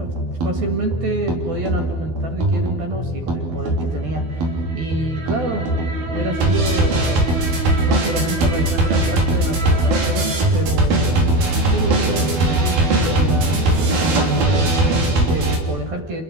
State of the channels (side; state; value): left; late; 12 ms